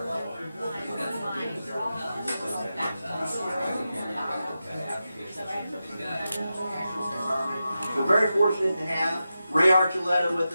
We're very fortunate to have Ray Archuleta with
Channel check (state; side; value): inverted; both; correlation -0.91